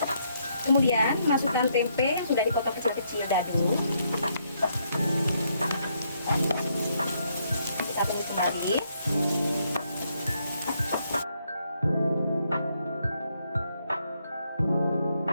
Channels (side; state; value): both; inverted; correlation -0.74